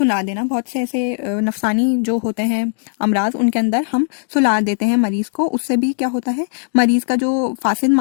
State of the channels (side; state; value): right; silent; digital silence